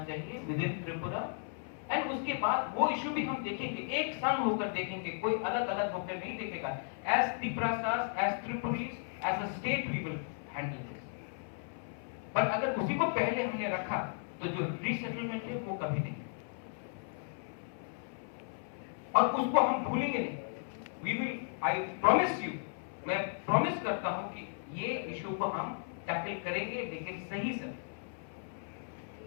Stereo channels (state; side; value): silent; right; 54 dB below the other